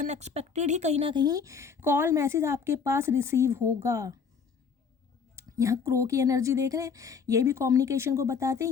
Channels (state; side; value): quieter; right; 6.0 dB